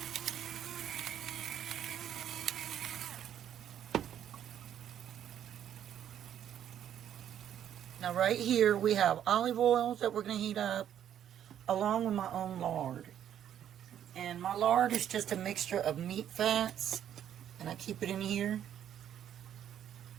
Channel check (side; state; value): left; quieter; 10.1 dB